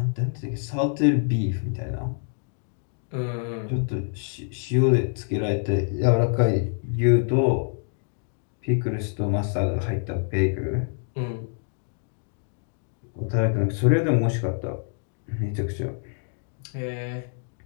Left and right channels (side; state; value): right; silent; 61 dB below the other